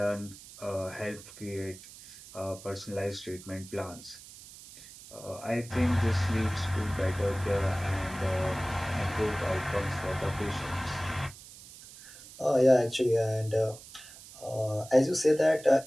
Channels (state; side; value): noise; right; hiss, 18 dB below the sound